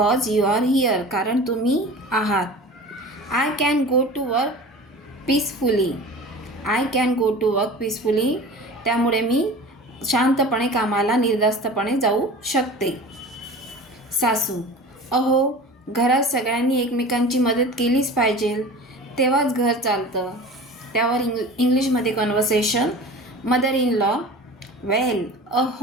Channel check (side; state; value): both; normal; correlation 0.38